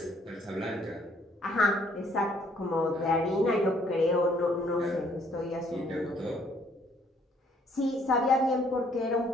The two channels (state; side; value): normal; both; correlation 0.64